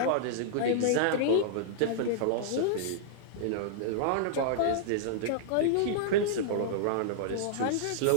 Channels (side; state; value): both; different; correlation -0.02